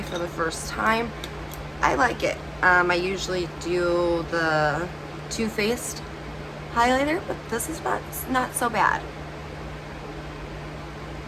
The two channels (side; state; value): both; identical; correlation 1.00